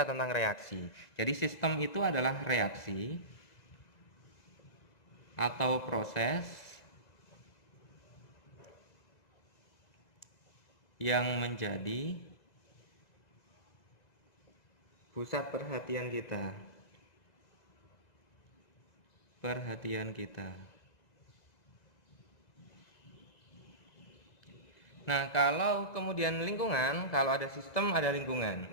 tentang reaksi. Jadi sistem itu adalah reaksi atau proses yang menjadi pusat perhatian kita. Nah, kalau kemudian lingkungan, kalau ada sistem, ada lingkungan.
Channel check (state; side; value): late; right; 2.0 ms